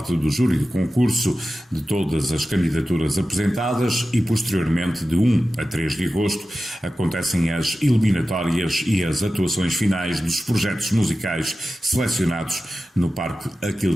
do júri do concurso de todas as candidaturas apresentadas e posteriormente de 1 a 3 de agosto acontecem as eliminatórias e as atuações finais dos projetos musicais selecionados no Parque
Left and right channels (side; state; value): both; normal; correlation 0.94